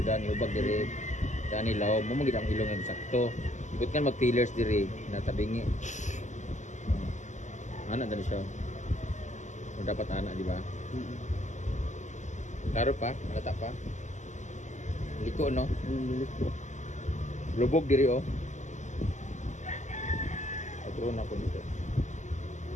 ani hubag diri. Gani law mo gid ang ilong ang sakto. Ibut kan mag pillars diri natabingi. Ana dali siya. Kung dapat anak di ba? Klaro pa, lata pa. Liko no. Lubog diri oh. Atro na ko nito.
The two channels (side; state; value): right; late; 0.34 ms